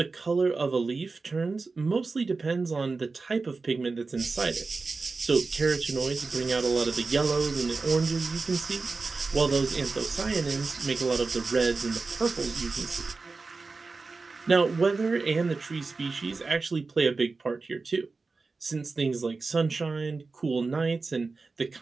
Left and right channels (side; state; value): left; quieter; 4.0 dB